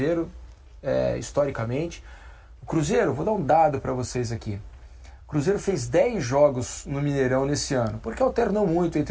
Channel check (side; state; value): both; identical; correlation 1.00